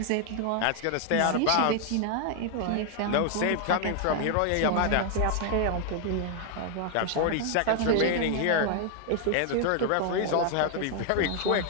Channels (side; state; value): both; different; correlation 0.00